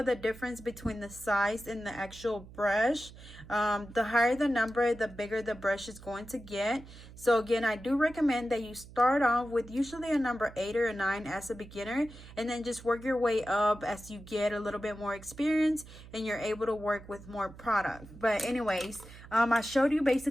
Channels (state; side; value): noise; right; hum, 18 dB below the sound